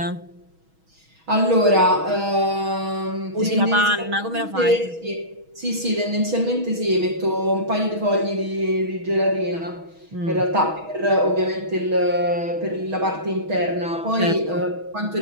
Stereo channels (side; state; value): left; late; 6.2 ms